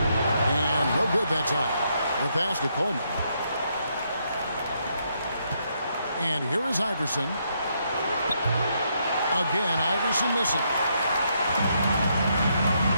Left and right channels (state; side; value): inverted; both; correlation -0.76